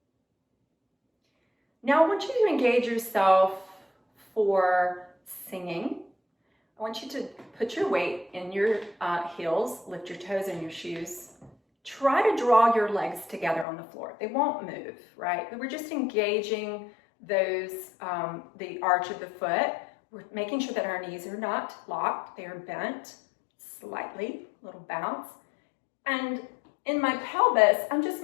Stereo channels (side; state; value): right; drops out; at 13.7 s